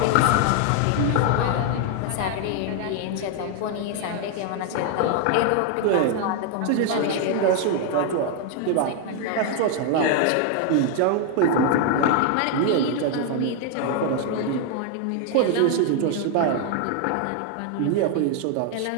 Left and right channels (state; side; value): different; both; correlation 0.00